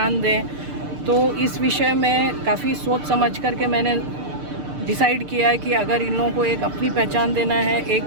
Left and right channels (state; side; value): late; left; 6.7 ms